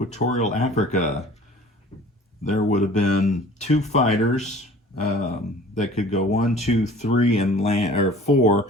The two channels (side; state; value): both; normal; correlation 0.47